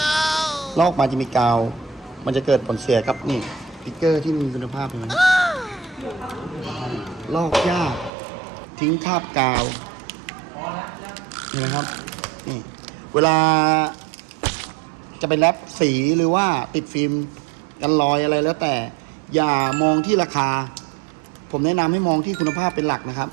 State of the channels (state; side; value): drops out; left; at 8.1 s